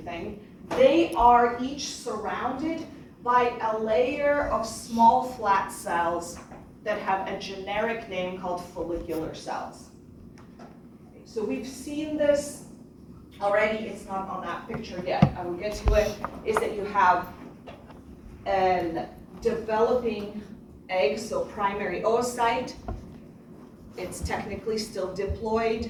They are each surrounded by a layer of small flat cells that have a generic name called follicular cells. So we've seen this already. It's not on that picture yet. I will get to it. Is that you have a developing egg, so primary oocyte. It's technically still diploid,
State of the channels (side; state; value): both; identical; correlation 1.00